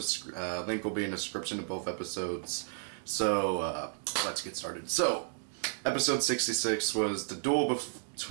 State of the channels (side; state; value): left; silent; digital silence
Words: Link will be in the description of both episodes. So, let's get started. So, episode 66 was the duel